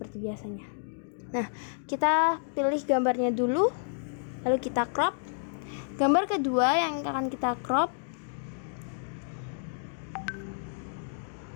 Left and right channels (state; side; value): silent; right; digital silence